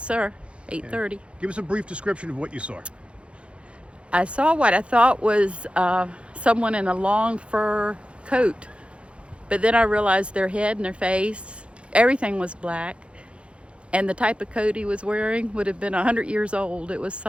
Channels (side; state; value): left; late; 0.059 ms